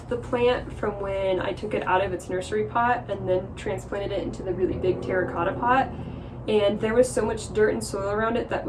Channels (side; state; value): both; identical; correlation 1.00